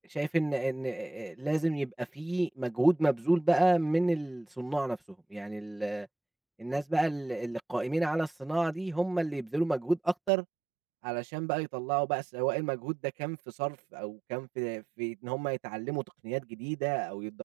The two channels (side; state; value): left; drops out; at 10.3 s